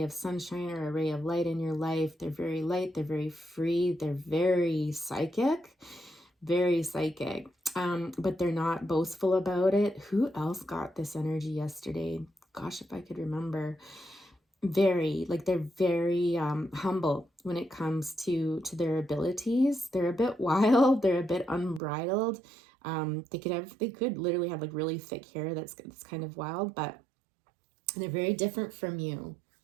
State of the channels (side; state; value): left; drops out; at 21.8 s